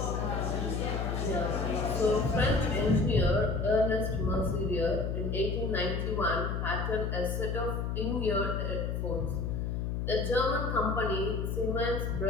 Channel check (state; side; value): noise; left; hum, 1 dB below the sound